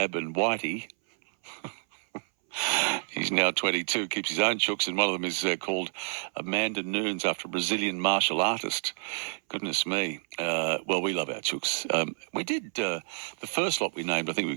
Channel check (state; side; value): silent; left; 59 dB below the other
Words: and Whitey. He's now 22, keeps his own chooks, and one of them is called Amanda Nunes after a Brazilian martial artist. Goodness me. Well, we love our chooks. We did the first lot we named. I think we